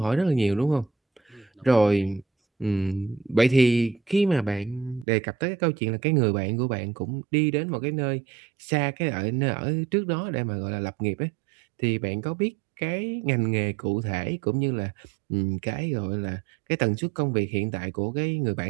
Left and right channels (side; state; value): left; drops out; at 5.1 s